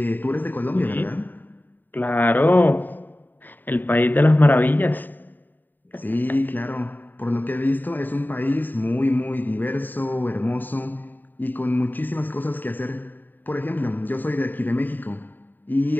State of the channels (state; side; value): late; right; 0.090 ms